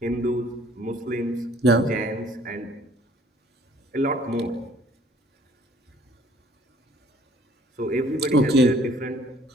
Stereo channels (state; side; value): normal; both; correlation 0.58